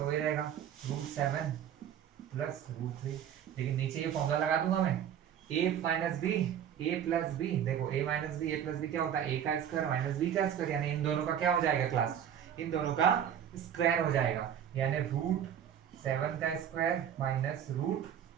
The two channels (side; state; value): left; quieter; 9.3 dB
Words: वही रहेगा √7 + √3। लेकिन नीचे ये फॉर्मूला लगा दूंगा मैं, a - b a + b, देखो a - b a + b क्या होता है, a का स्क्वायर माइनस b का स्क्वायर, यानी इन दोनों का क्या हो जाएगा क्लास, इन दोनों का स्क्वायर हो जाएगा, यानी √7 का स्क्वायर माइनस